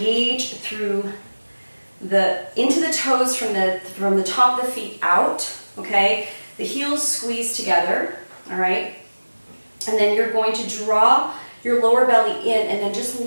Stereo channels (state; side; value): inverted; both; correlation -1.00